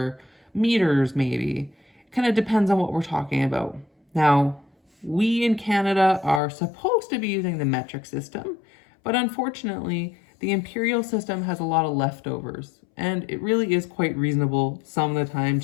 meters maybe. Kind of depends on what we're talking about. Now, we in Canada are supposed to be using the metric system, but unfortunately, the imperial system has a lot of leftovers, and it really is quite reasonable some of the time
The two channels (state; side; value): drops out; right; at 6.4 s